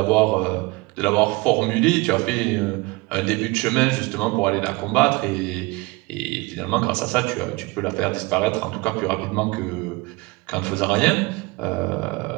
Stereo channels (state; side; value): quieter; left; 24.4 dB